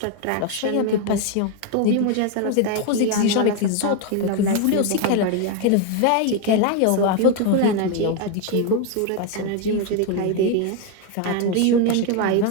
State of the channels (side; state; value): both; different; correlation 0.01